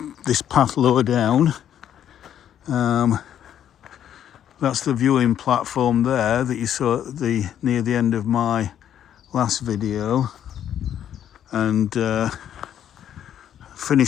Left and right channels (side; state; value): right; quieter; 10.1 dB